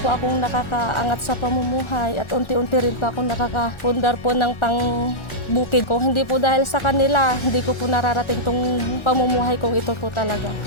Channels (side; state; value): right; late; 1.4 ms